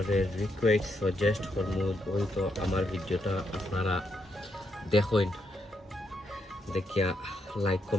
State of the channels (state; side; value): normal; both; correlation 0.79